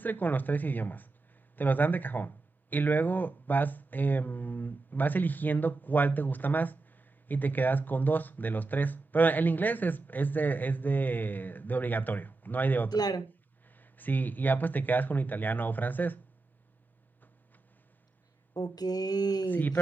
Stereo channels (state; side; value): quieter; left; 3.5 dB